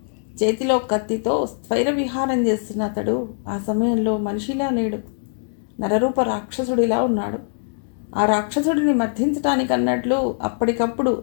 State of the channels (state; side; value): silent; right; digital silence